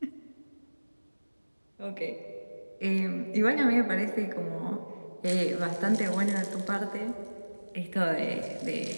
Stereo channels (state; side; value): inverted; both; correlation -1.00